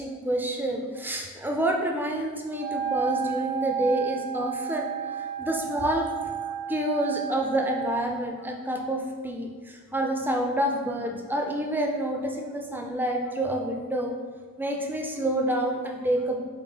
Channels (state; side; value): normal; both; correlation 0.45